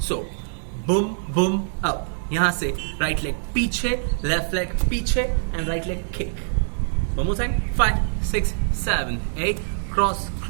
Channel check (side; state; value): left; silent; digital silence